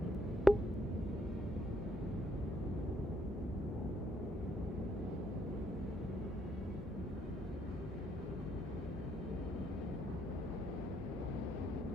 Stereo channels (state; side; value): normal; both; correlation 0.71